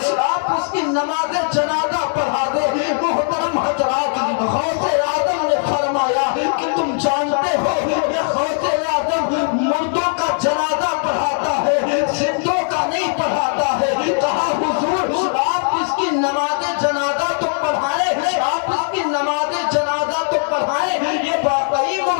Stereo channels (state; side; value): silent; right; 58 dB below the other